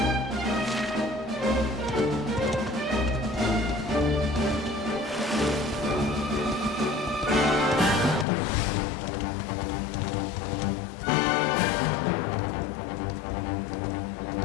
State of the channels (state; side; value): drops out; right; at 8.2 s